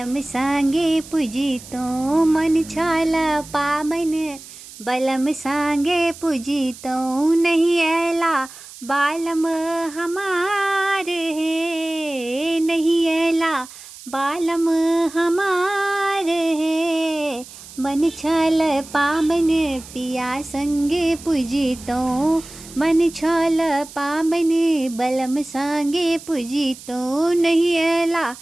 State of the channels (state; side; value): noise; right; hiss, 17 dB below the sound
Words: सांगे पूजितो। मन छाल पाबन बलम सांगे पूजितो। नहीं ऐला बालम हमार है, नहीं ऐला बालम हमार है। मन छाल पाबन पिया संगे पूजितो। मन छाल पाबन बलम सांगे पूजितो। नहीं ऐला